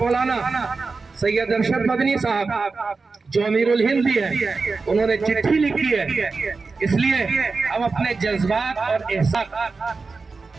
मौलाना सैयद अरशद मदनी साहब जो अमीरुल हिंद भी है, उन्होंने चिट्ठी लिखी है, इसलिए हम अपने जज्बात और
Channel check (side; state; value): left; quieter; 4.2 dB